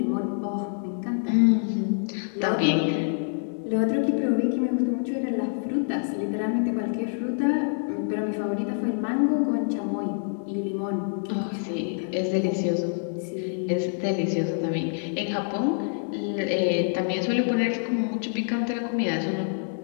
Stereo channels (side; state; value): right; silent; digital silence